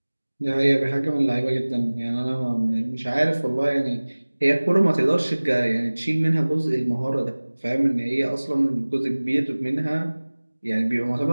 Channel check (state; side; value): inverted; both; correlation -1.00